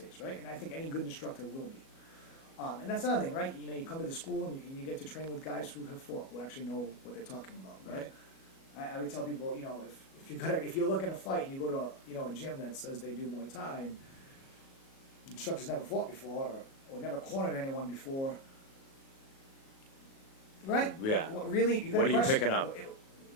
right? And I think any good instructor will be. And that's another thing, right? You know, you come to the school and you get to train with guys who have fought, who actually know what they're talking about, right? I would tell people, you know, if you're looking to fight and you go to a gym that says they do Muay Thai and instructors never fought before or never cornered anyone before, right? Yeah. Really, you got What are you picking up?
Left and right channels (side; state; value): right; late; 37 ms